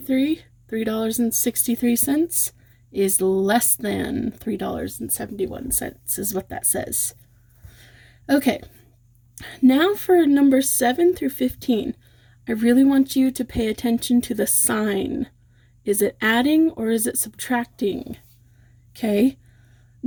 is less than $3.71 is what that says. Okay, now for number 7 through 15. I really want you to pay attention to the sign. Is it adding or is it subtracting? Okay,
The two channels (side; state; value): both; identical; correlation 1.00